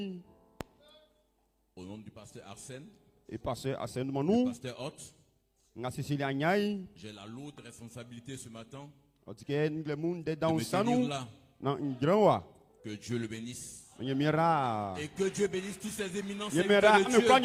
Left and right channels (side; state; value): both; identical; correlation 1.00